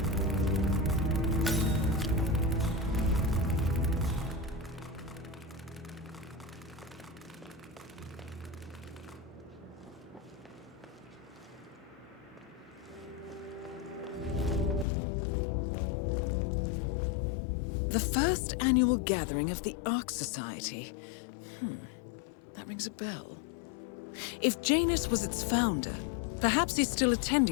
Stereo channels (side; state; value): right; drops out; at 14.9 s